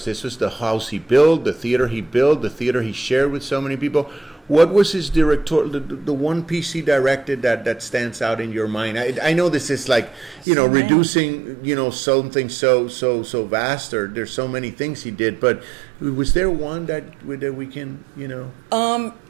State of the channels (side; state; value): left; drops out; at 10.5 s